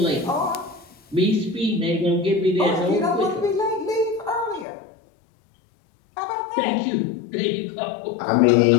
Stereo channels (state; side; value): drops out; right; at 4.7 s